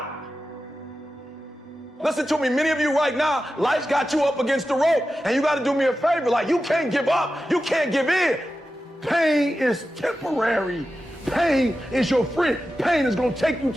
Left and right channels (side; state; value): both; normal; correlation 0.92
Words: Listen to me, many of you right now, life's got you up against the rope, and you got to do me a favor. Like, you can't give up. You can't give in. Pain is temporary. Pain is your friend. Pain is going to take you